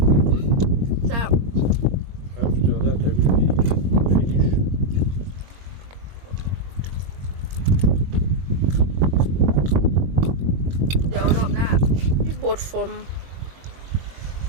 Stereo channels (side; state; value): left; late; 22 ms